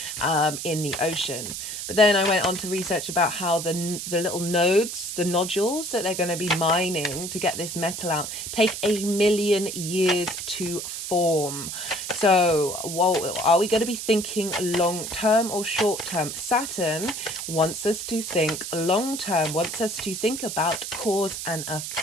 in the ocean. But then I went on to research about how the little nodes, the nodules that they're going to be mining to get this metal out, take 1,000,000 years to form. So are we going to be thinking long term or short term? Saturn wants us to think long term, wants us to think about cause and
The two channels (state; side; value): noise; right; hiss, 6 dB below the sound